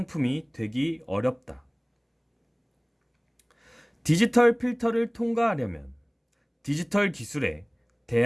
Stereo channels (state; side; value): identical; both; correlation 1.00